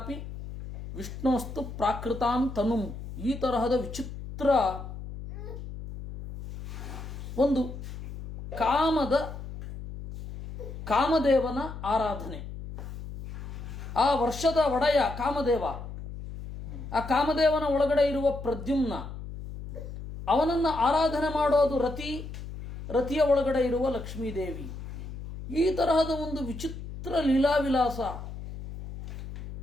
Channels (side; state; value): left; noise; hum, 10 dB below the sound